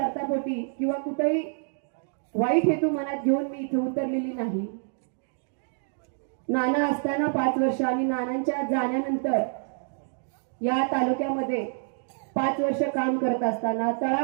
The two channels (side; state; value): left; silent; digital silence